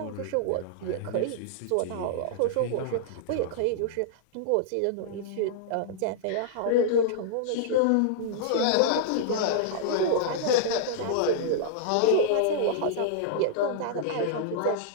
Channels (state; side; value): different; both; correlation -0.02